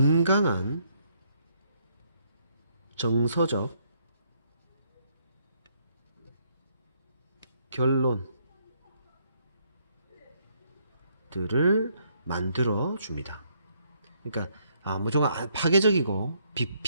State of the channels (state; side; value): inverted; both; correlation -0.71